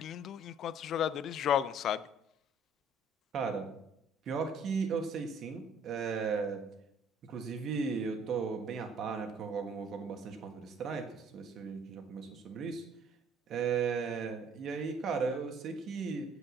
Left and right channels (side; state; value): both; normal; correlation 0.57